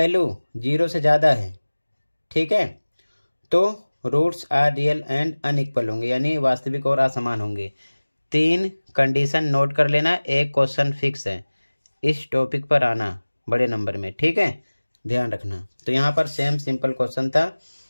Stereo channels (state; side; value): inverted; both; correlation -1.00